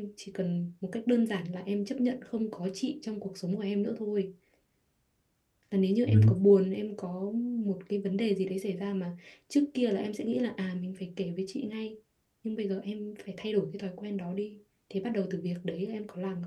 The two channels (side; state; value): both; identical; correlation 1.00